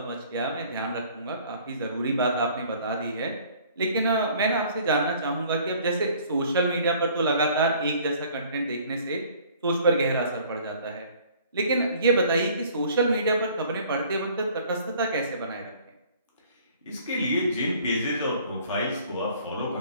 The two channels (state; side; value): inverted; both; correlation -0.54